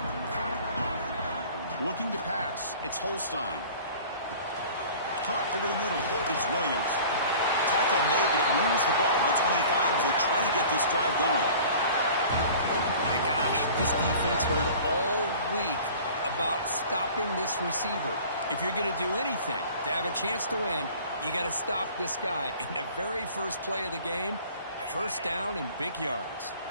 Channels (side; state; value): both; inverted; correlation -0.45